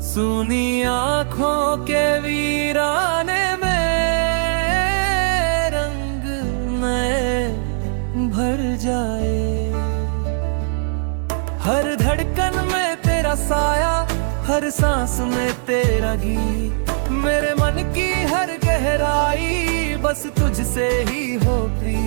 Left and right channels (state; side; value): silent; left; 66 dB below the other